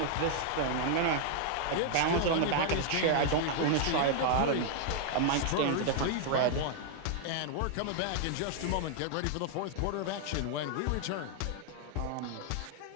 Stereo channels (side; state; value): both; different; correlation 0.00